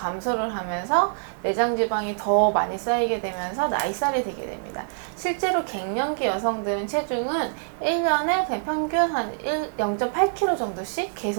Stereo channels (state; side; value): silent; left; digital silence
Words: 하면서 내장 지방이 더 많이 쌓이게 되면서 나이살이 되게 됩니다. 실제로 갱년기 여성들은 체중은 1년에 그냥 평균 한 0.8kg 정도씩